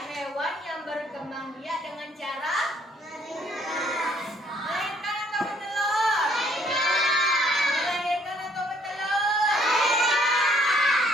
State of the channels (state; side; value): normal; both; correlation 0.63